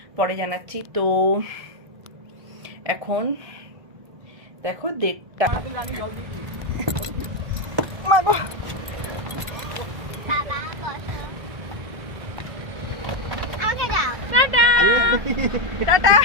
পরে জানাচ্ছি। তো এখন দেখো 1:30। টাটা।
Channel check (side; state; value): left; late; 1.7 ms